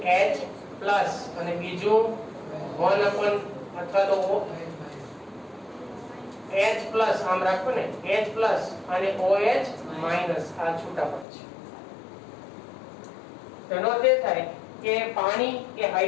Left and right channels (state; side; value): drops out; right; at 11.2 s